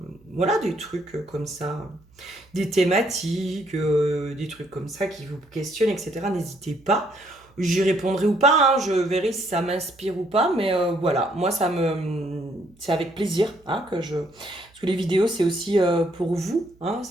Voilà, des trucs comme ça, des thématiques, des trucs comme ça qui vous questionnent, etc. N'hésitez pas. J'y répondrai ou pas, hein, je verrai si ça m'inspire ou pas, mais voilà, moi c'est avec plaisir hein, que je... Parce que les vidéos, c'est aussi pour vous, hein,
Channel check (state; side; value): noise; right; hum, 30 dB below the sound